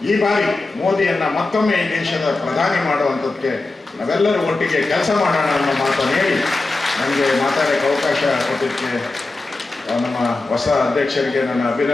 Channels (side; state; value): right; quieter; 3.3 dB